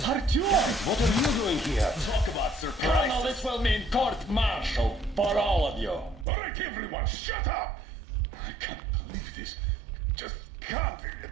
Artyom, what are you doing here? Talk about surprise. Colonel, this will mean court-martial for all of you. All right, everyone, shut up! I can't believe this. Just can't.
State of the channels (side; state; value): left; drops out; at 6.2 s